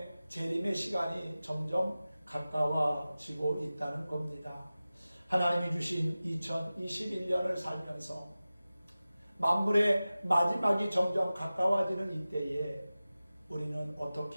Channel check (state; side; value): inverted; both; correlation -0.96